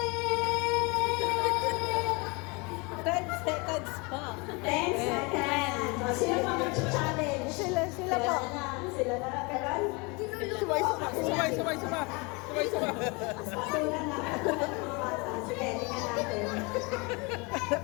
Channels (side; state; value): right; quieter; 28.5 dB